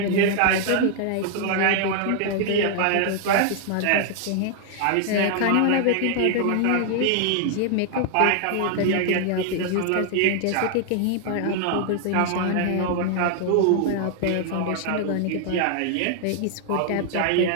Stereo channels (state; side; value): different; both; correlation 0.00